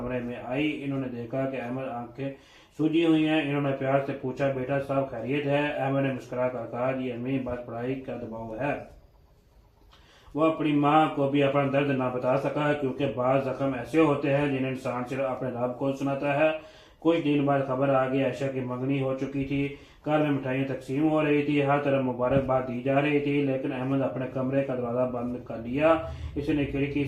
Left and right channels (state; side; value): identical; both; correlation 1.00